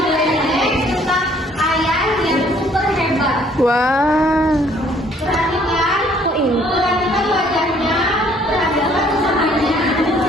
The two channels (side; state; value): both; normal; correlation 0.61